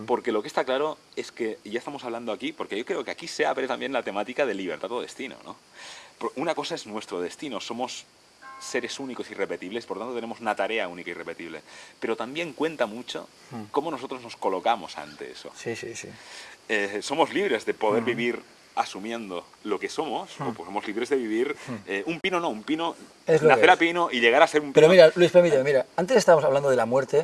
Porque lo que está claro es que, y ya estamos hablando aquí, porque yo creo que aquí se abre también la temática de libertad o destino, ¿no? Una cosa es nuestro destino, somos seres únicos y irrepetibles, por tanto tenemos una tarea única y irrepetible. Pero también cuenta mucho cómo nosotros nos colocamos ante eso. Sí, sí, sí. Somos libres de poder vivir asumiendo lo que somos, o pues somos libres de vivir un pino, Es lo que nacer a es. pino y llegar a ser un pino. Pero mira, Luis, permíteme, mira, antes estábamos hablando de la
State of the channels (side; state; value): both; identical; correlation 1.00